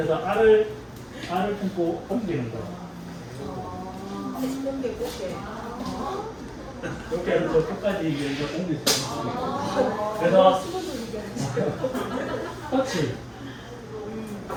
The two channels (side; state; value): both; identical; correlation 1.00